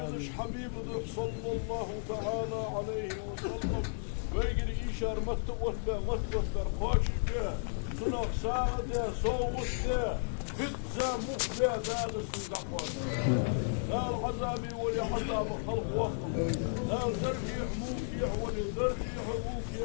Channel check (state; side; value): silent; right; 55 dB below the other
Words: حبيب دق صلى الله تعالى عليه وسلم ويجري إيشار متوثبر قاشي بيه سنق ساعده صوته بيتزا مخبئ دال السندقوات دال عذابي ولي عذاب خلق وخم دال درجيح موكيع ولي درجيح